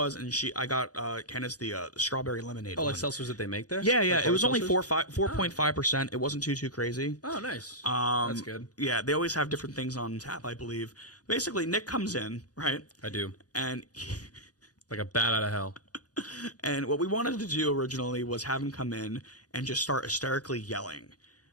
and I got Candace the strawberry lemonade. Oh, one. like seltzers that they make there? Yeah. Like It was only seltzers? 4.5%. It wasn't too crazy. Oh, nice. That's good. Yeah, they always have different things on tap, I believe. Basically, Nick comes in, right? I do. And Like a bat out of hell. and what we wanted to do originally was have him come in and just start hysterically yelling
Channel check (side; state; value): right; late; 0.68 ms